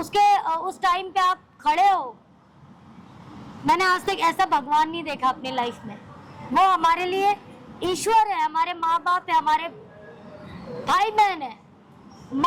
उस टाइम पे आप खड़े हो। मैंने आज तक ऐसा भगवान नहीं देखा अपनी लाइफ में। वो हमारे लिए ईश्वर है, हमारे माँ बाप है, हमारे भाई बहन है,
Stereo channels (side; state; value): both; identical; correlation 1.00